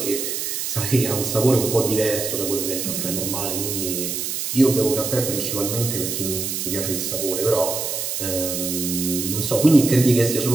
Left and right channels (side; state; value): right; noise; hiss, 3 dB below the sound